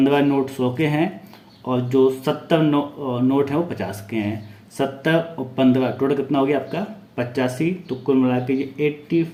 नोट 100 के हैं, और जो 70 नोट हैं वो 50 के हैं। 70 और 15 टोटल कितना हो गया आपका 85, तो कुल मिला के ये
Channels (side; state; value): both; identical; correlation 1.00